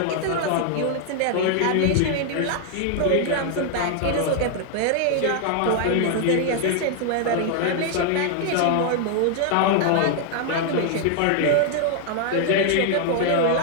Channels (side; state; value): both; different; correlation 0.00